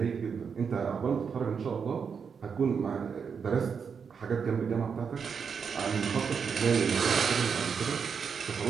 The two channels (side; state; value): left; quieter; 6.3 dB